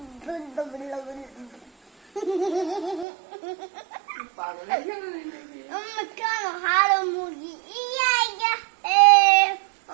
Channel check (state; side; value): drops out; left; at 3.1 s